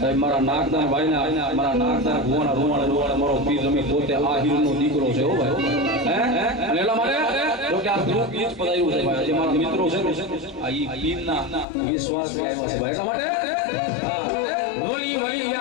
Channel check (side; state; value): right; drops out; at 11.7 s